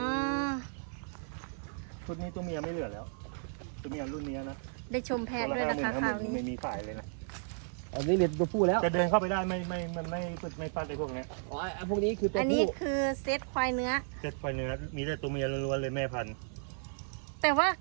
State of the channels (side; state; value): left; silent; 55 dB below the other